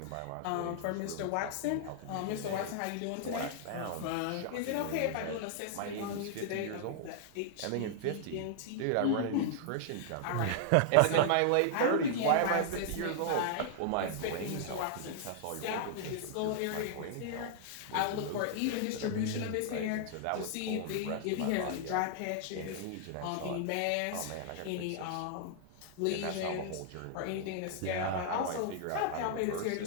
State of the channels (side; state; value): both; different; correlation -0.01